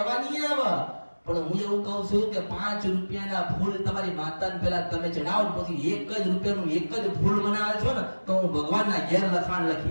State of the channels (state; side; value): inverted; both; correlation -1.00